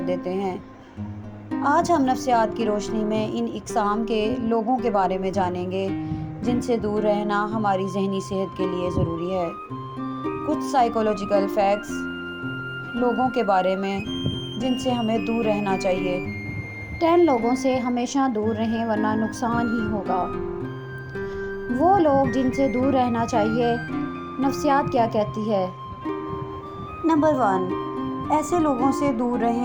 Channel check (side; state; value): both; identical; correlation 1.00